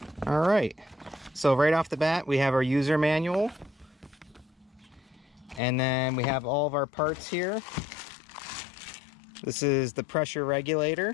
All right, so right off the bat, we have our user manual. And then we have all of our parts here. This is the pressure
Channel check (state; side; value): drops out; right; at 5.6 s